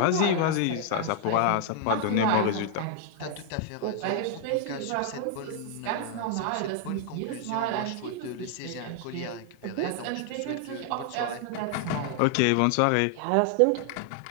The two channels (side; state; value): both; different; correlation 0.00